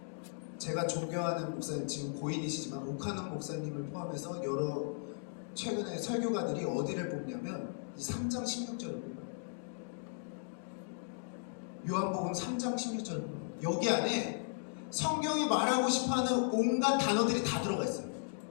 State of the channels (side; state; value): right; silent; digital silence